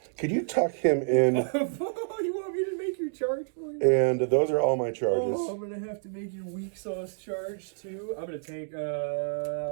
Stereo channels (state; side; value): silent; left; digital silence